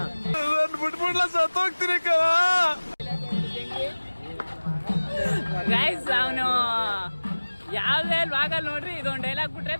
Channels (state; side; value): inverted; both; correlation -1.00